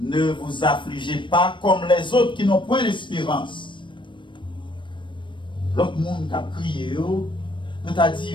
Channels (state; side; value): late; right; 0.23 ms